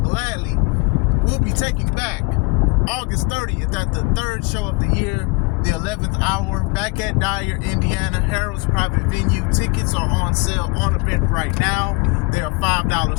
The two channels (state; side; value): quieter; right; 28.7 dB